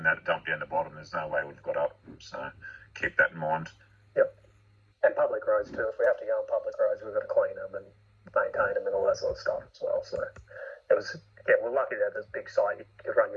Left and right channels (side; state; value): both; identical; correlation 1.00